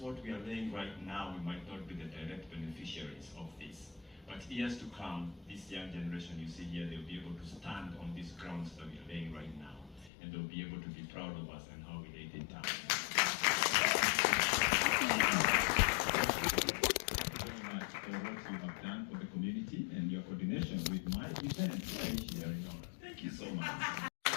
what we are laying right now, we might not be the direct beneficiaries of this. But years to come, this young generation you see here, they'll be able to stand on these grounds that we are laying right now. And they'll be able to be proud of us and how we laid it down. For what you have done for the community and your coordination with my event here in honor. Thank you so much.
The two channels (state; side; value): drops out; right; at 10.1 s